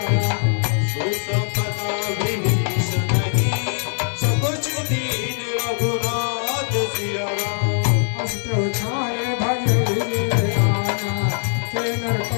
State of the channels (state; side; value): silent; right; digital silence